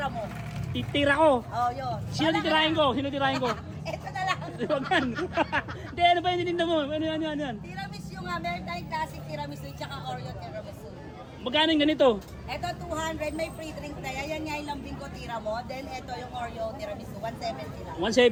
mo. Titira ko. Oh, yun. Sino titirahin ko? Sino titirahin ko? Ito na lang. Huwag yan. Hindi, ano ba yung tininda mo? Ano yan? Tiramisu nga, meron tayong classic tiramisu tsaka Oreo tiramisu. Magkano yung ganito? Ito 200, may free drink na yan. Yan nga yung lambing ko, tira mo. Then ito yung Oreo tiramisu, 170 lang.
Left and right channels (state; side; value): identical; both; correlation 1.00